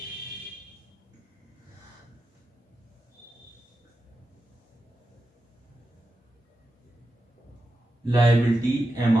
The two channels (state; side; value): normal; both; correlation 0.90